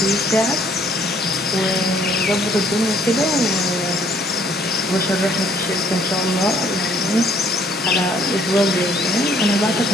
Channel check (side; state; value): both; normal; correlation 0.62